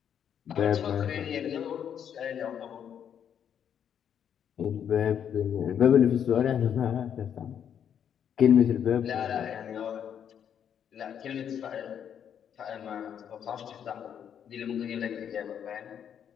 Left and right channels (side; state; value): right; quieter; 8.7 dB